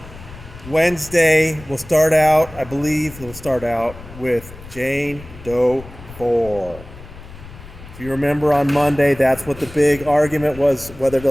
Wednesday, we'll start out with Jane Doe 4. If you remember on Monday, that's what the big argument was, whether to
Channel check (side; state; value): left; noise; rumble, 17 dB below the sound